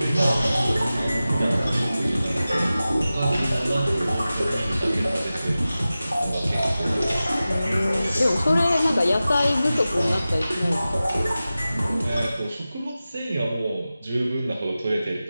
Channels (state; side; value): inverted; both; correlation -0.95